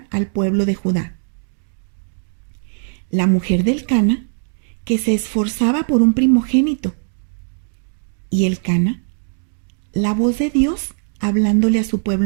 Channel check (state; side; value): silent; left; digital silence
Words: al pueblo de Judá. La mujer del Cana, que se esforzaba por un primogénito, y el Cana, la voz de Dios hablándole a su